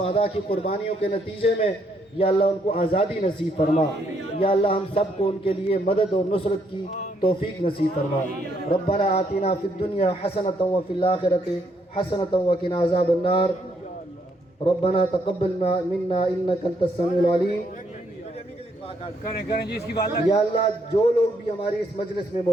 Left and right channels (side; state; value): both; normal; correlation 0.73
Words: की कुर्बानियों के नतीजे में, या अल्लाह उनको आज़ादी नसीब फरमा। या अल्लाह, हम सबको उनके लिए मदद और नुसरत की तौफीक नसीब फरमा। रब्बना आतिना फिद दुनिया हसनतन व फिल आखिरति हसनतन व किना अज़ाबन्नार। रब्बना तक़ब्बल मिन्ना इन्नका अंतस समीउल अलीम। करें जी इसकी बात। या अल्लाह, जो लोग भी हमारी इस मजलिस में